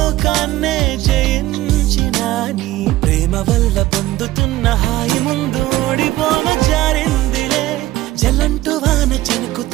జయించిన నీ ప్రేమ వల్ల పొందుతున్న హాయి ముందు ఓడిపోన జారిందిలే జలంటు వాన చెనుకు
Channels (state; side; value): quieter; left; 16.5 dB